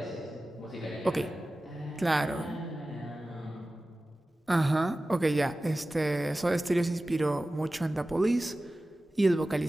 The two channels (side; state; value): both; normal; correlation 0.96